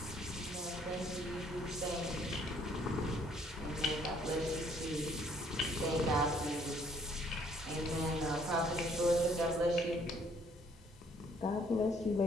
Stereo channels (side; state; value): both; normal; correlation 0.63